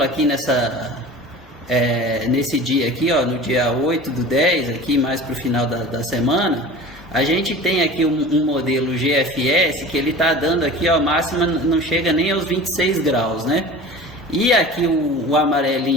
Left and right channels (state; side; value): normal; both; correlation 0.38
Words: aqui nesse dia aqui, ó, no dia 8/10, aqui mais para o final da semana, a gente tem aqui um modelo GFS que ele está dando aqui, ó, a máxima não chega nem aos 26 graus, né? E aqui o